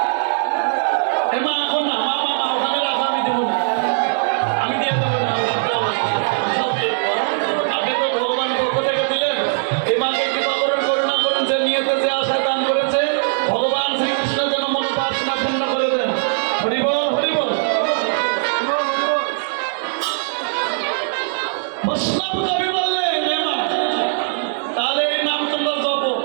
এ মা এখন না, মা মা মা ওখানে রাখো, আমি দেবো না, আমি দিয়ে দেবো না। সব দিয়ে দেবো। আপনি তো ভগবান পক্ষ থেকে দিলেন। এই মাকে কৃপা করুন, করুণা করুন। যে নিয়েতে যে আশা দান করেছে ভগবান শ্রীকৃষ্ণ যেন মনোবাসনা পূর্ণ করে দেন। হরি বল, হরি বল। বৈষ্ণব কবি বললেন, হে মা, তাহলে এই নাম তোমরা জপো।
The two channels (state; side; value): silent; left; 66 dB below the other